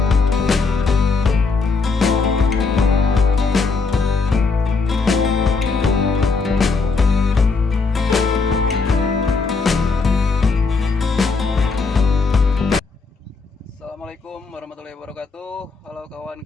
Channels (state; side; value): quieter; right; 4.3 dB